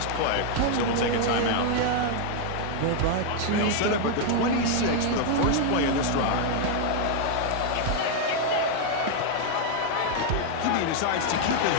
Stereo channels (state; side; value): different; both; correlation 0.00